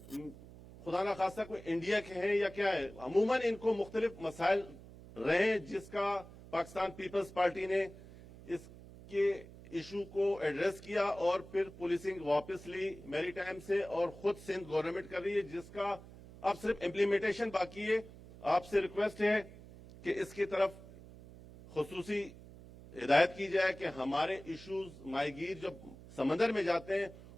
خدا نخواستہ کوئی انڈیا کے ہیں یا کیا ہے. عموماً ان کو مختلف مسائل رہے جس کا پاکستان پیپلز پارٹی نے اس کے ایشو کو ایڈریس کیا اور پھر پولیسنگ واپس لی میری ٹائم سے اور خود سندھ گورنمنٹ کر رہی ہے جس کا اب صرف امپلیمنٹیشن باقی ہے. آپ سے ریکویسٹ ہے کہ اس کی طرف خصوصی ہدایت کی جائے کہ ہمارے ایشوز ماہی گیر جب سمندر میں جاتے ہیں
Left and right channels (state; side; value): noise; right; hum, 18 dB below the sound